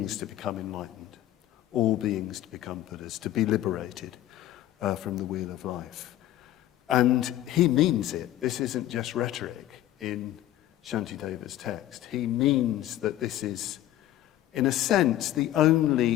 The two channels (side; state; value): right; quieter; 13.5 dB